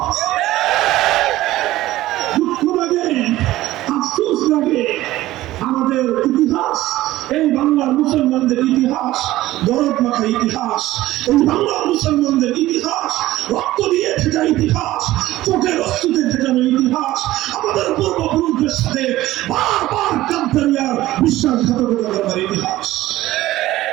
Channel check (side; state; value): left; quieter; 16.0 dB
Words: দুঃখ লাগে, আফসোস লাগে, আমাদের ইতিহাস, এই বাংলার মুসলমানদের ইতিহাস দরদ মাখা ইতিহাস, এই বাংলার মুসলমানদের ইতিহাস রক্ত দিয়ে ভেজা ইতিহাস, চোখের অস্তুতে ভেজানো ইতিহাস, আমাদের পূর্বপুরুষদের সাথে বারবার কাদ্দারিয়ার বিশ্বাসঘাতকতা করার ইতিহাস।